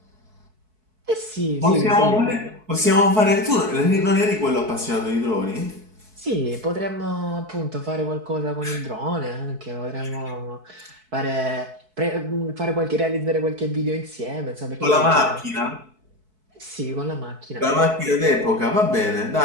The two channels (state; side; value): late; left; 4.6 ms